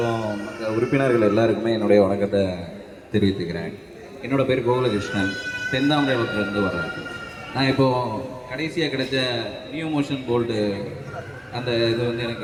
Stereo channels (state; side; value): identical; both; correlation 1.00